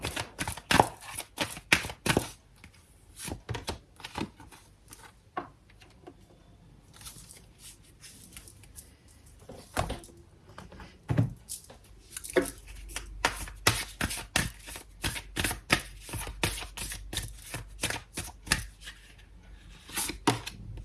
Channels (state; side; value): identical; both; correlation 1.00